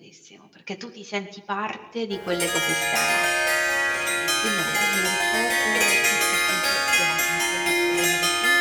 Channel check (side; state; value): both; identical; correlation 1.00